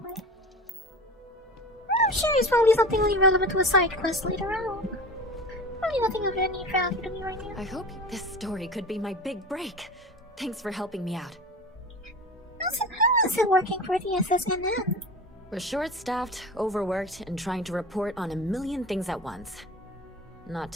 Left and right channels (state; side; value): normal; both; correlation 0.33